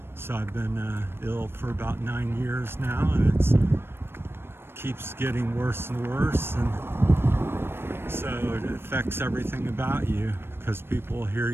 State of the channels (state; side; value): late; left; 0.11 ms